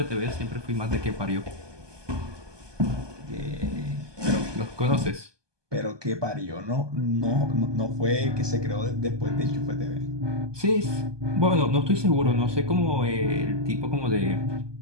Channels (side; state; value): left; late; 1.2 ms